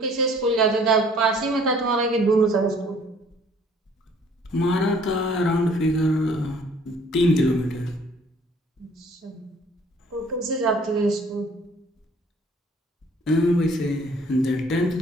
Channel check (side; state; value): both; normal; correlation 0.57